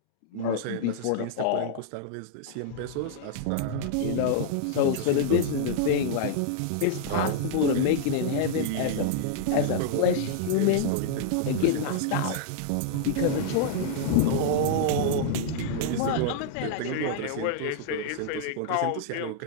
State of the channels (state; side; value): different; both; correlation -0.01